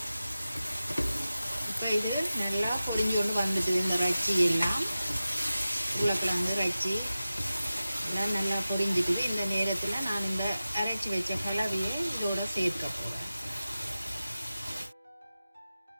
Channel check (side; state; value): both; inverted; correlation -0.95